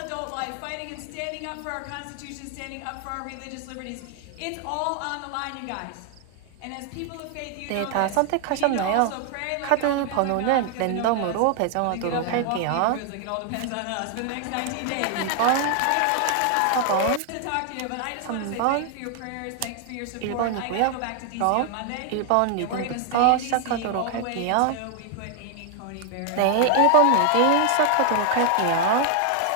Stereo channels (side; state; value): both; different; correlation 0.00